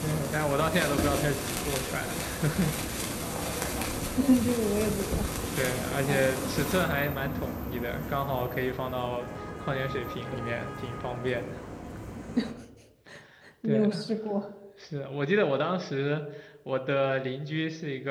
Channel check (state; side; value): identical; both; correlation 1.00